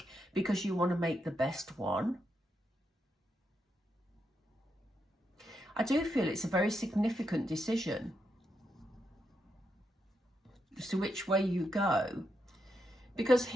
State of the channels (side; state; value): both; normal; correlation 0.82